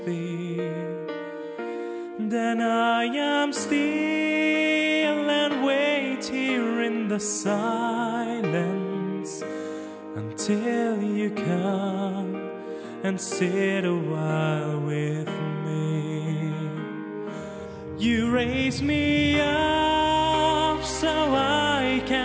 be, then I am still and wait here in the silence until you come and sit a while with me. You raise me up so I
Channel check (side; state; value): both; identical; correlation 1.00